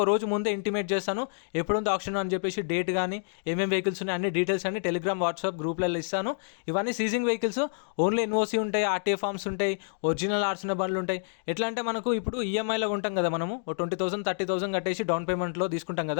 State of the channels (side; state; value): right; silent; digital silence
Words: రోజు ముందే ఇంటిమేట్ చేస్తాను, ఎప్పుడుందో ఆప్షన్ అని చెప్పేసి డేట్ కానీ ఏమేమి వెహికల్స్ ఉన్నాయి అన్ని డీటెయిల్స్ అన్ని టెలిగ్రామ్, వాట్సాప్ గ్రూప్లలో ఇస్తాను. ఇవన్నీ సీజింగ్ వెహికల్స్, ఓన్లీ ఎన్ఓసీ ఉంటాయి, ఆర్టీఏ ఫార్మ్స్ ఉంటాయి, ఒరిజినల్ ఆర్సిన బండ్లు ఉంటాయి. ఎట్లా అంటే మనకు ఇప్పుడు ఈఎంఐలో ఉంటాం కదా, మనము 20,000 30,000 కట్టేసి డౌన్ పేమెంట్లో తీసుకుంటాం